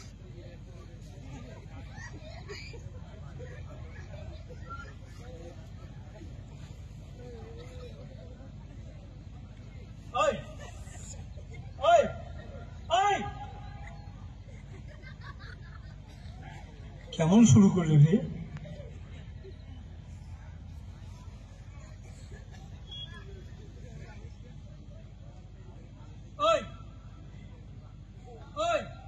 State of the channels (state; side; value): identical; both; correlation 1.00